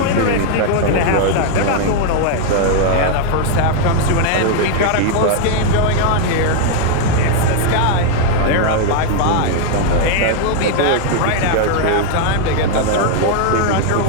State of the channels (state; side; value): different; both; correlation 0.00